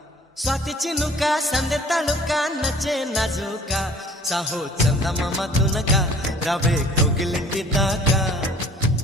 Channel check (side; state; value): both; normal; correlation 0.52